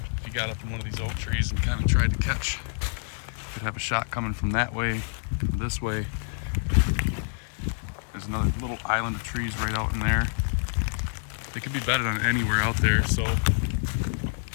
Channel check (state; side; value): silent; right; digital silence